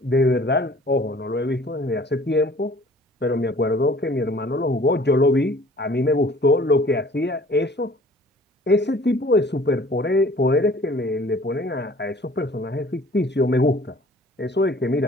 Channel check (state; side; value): normal; both; correlation 0.51